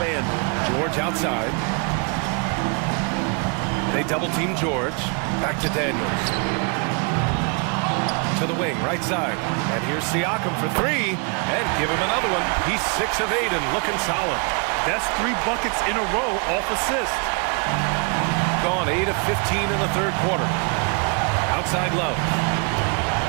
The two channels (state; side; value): quieter; left; 35.4 dB